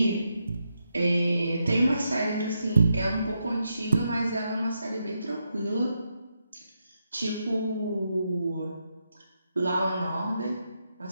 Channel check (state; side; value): inverted; both; correlation -0.83